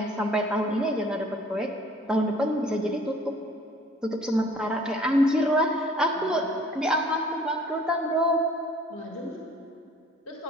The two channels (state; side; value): normal; both; correlation 0.53